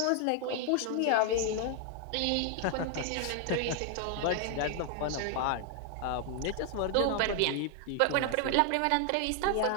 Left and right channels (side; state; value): both; different; correlation 0.00